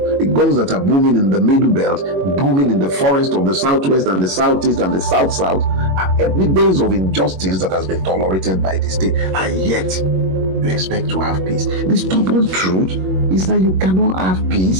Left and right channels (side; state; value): left; late; 21 ms